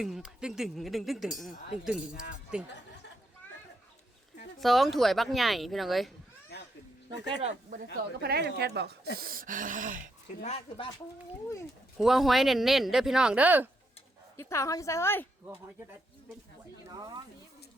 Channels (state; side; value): normal; both; correlation 0.79